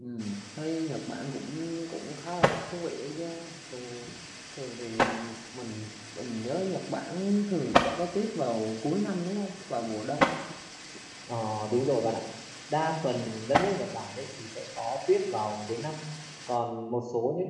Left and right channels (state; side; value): identical; both; correlation 1.00